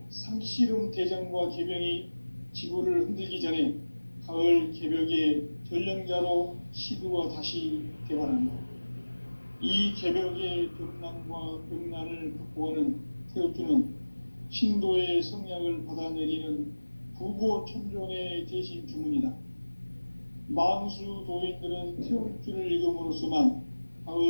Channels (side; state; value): both; inverted; correlation -1.00